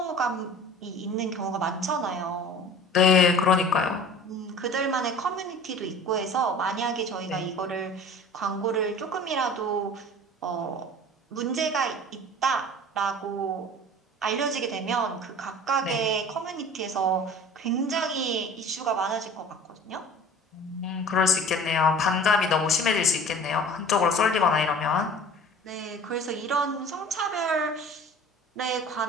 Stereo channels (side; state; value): both; normal; correlation 0.43